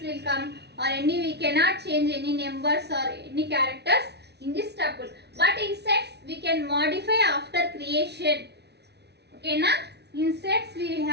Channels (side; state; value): left; late; 0.49 ms